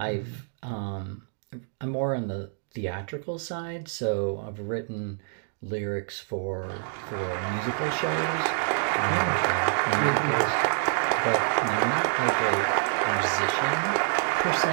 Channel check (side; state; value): left; silent; 60 dB below the other